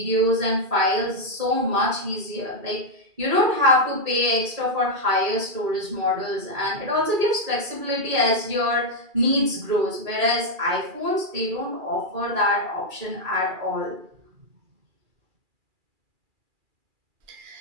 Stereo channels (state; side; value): late; left; 2.4 ms